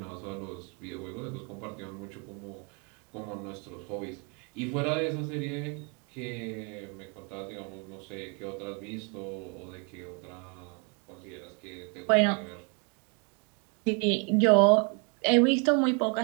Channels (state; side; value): quieter; left; 36.2 dB